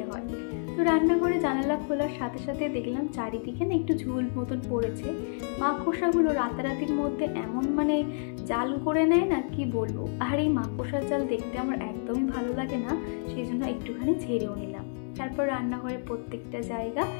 হয়। তো রান্নাঘরে জানালা খোলার সাথে সাথে দেখলাম চারিদিকে না একটু ঝুল মতন পড়েছে। মাকড়সাগুলো রাতারাতির মধ্যে এমন জাল করে নেয় না, কি বলবো। আর এই মাকড়সার জাল দেখতে আমার একদমই ভালো লাগে না, সেই জন্য একটুখানি ঝেড়েও নিলাম। তারপর রান্নাঘরে প্রত্যেকটা জায়গা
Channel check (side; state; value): right; silent; digital silence